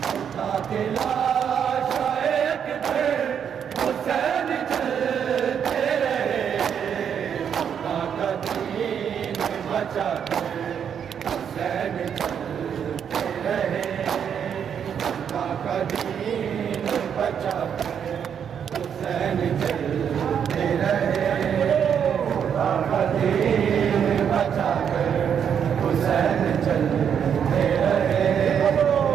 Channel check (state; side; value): quieter; left; 8.0 dB